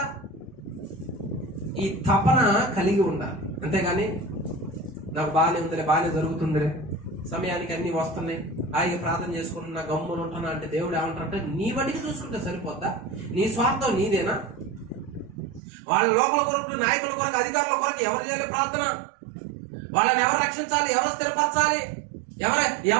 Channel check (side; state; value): left; drops out; at 15.6 s